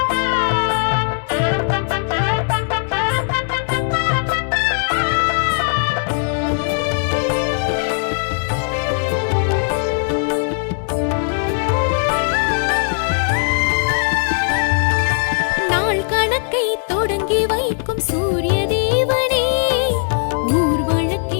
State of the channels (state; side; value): silent; right; 67 dB below the other